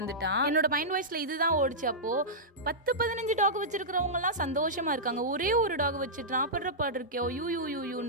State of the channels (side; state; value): both; normal; correlation -0.12